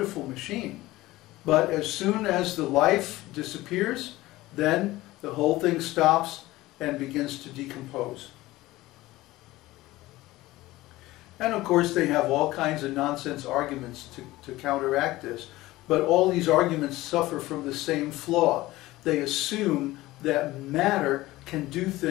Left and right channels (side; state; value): right; quieter; 18.0 dB